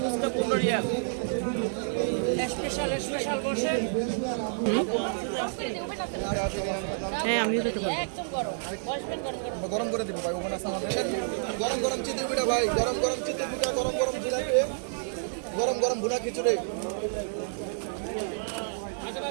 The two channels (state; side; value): silent; left; digital silence